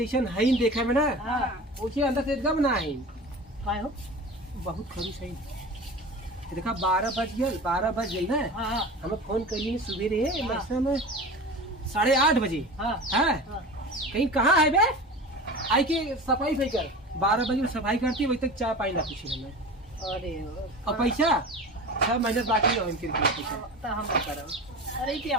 है देखा में ना। हां ओके अंदर से एकदम ना है काहे हो बहुत खरीस है। देखा 12 बज गई ना। हां हमें फोन करी सुबह रे मस्ता में 8:30 बजे। हां हां कहीं कहां है बे आई के सफाई भाई कर 12 बजे सफाई करती वही तक चाय पानी ना पूछी हमें। अरे और पैसा 6 महीने बाकी है इनके पैसा तो हम करब। अरे क्या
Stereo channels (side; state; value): both; normal; correlation 0.33